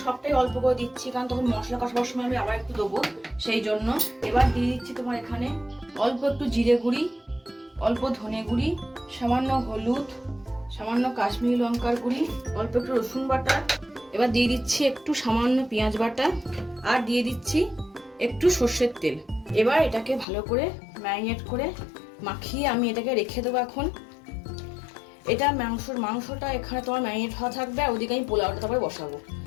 সবটাই অল্প করে দিচ্ছি, কারণ তখন মশলা কষাবার সময় আমি আবার একটু দেবো, সেই জন্য। এবার দিয়ে দিচ্ছি তোমার এখানে অল্প একটু জিরে গুঁড়ি, অল্প ধনে গুঁড়ি, সামান্য হলুদ, সামান্য কাশ্মীরি লঙ্কার গুঁড়ি, অল্প একটু রসুন বাটা। এবার দিয়ে দিচ্ছি একটু সামান্য পেঁয়াজ বাটা, আর দিয়ে দিচ্ছি একটু সর্ষের তেল। এবার এটাকে ভালো করে ম্যারিনেট করে মাখিয়ে আমি এটাকে রেখে দেবো এখন। এটা মাংসটা এখানে তোমার ম্যারিনেট হওয়া থাকবে, আর ওদিকে আমি পোলাওটা তারপরে বসাবো।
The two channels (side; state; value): right; drops out; at 20.2 s